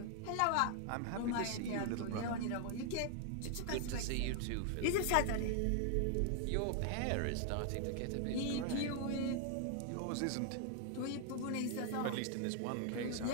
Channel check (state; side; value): different; both; correlation 0.00